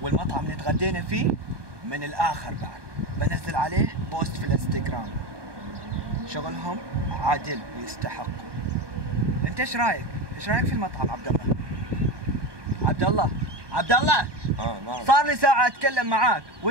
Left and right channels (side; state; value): left; late; 1.2 ms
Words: والمطعم اللي تغدينا فيه من الآخر بعد. بنزل عليه بوست في الانستغرام. شغلهم عادل ويستحقوا. انت ايش رايك؟ ايش رايك في المطعم عبد الله؟ عبد الله عبد الله نعم. صار لي ساعة اتكلم معاك